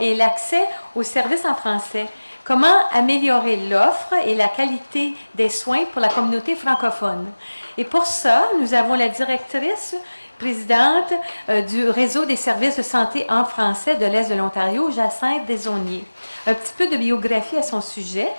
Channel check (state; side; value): inverted; both; correlation -1.00